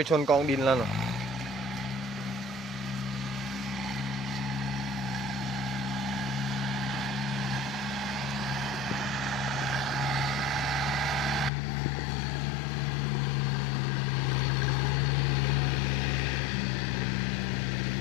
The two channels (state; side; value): drops out; right; at 11.5 s